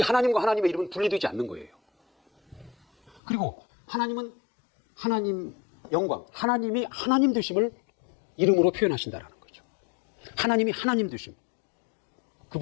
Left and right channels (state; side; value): drops out; right; at 3.2 s